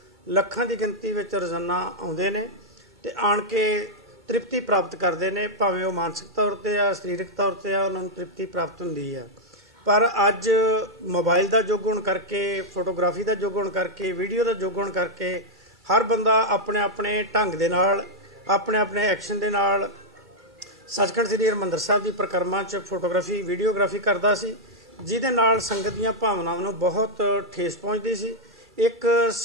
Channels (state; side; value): normal; both; correlation -0.04